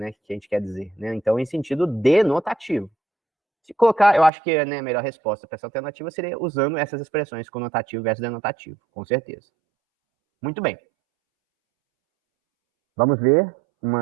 que a gente quer dizer, né? Então, em sentido denotativo. Se colocar, eu acho que, né, a melhor resposta para essa alternativa seria usando essas expressões conotativo versus denotativo, com certeza. Muito bem. Vamos ver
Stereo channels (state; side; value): drops out; left; at 4.3 s